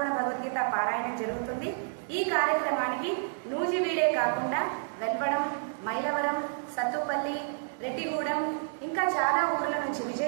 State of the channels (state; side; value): silent; left; digital silence